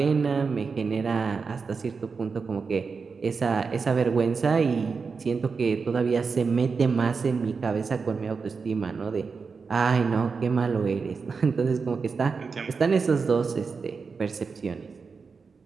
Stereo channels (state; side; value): quieter; left; 5.1 dB